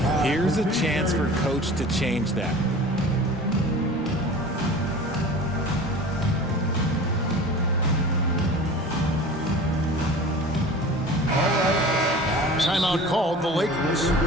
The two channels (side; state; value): both; normal; correlation 0.39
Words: Here's a chance for coach to change that. Timeout called the Lakers.